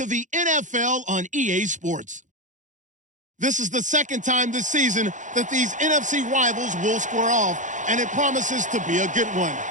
the NFL on EA Sports. This is the second time this season that these NFC rivals will square off, and it promises to be a good one.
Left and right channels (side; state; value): left; late; 0.36 ms